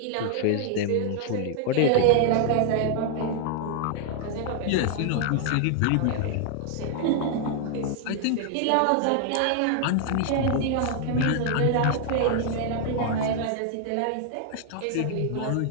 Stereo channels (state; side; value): different; both; correlation 0.00